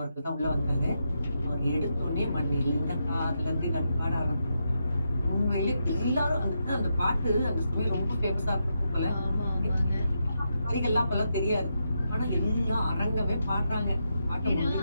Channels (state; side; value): inverted; both; correlation -0.84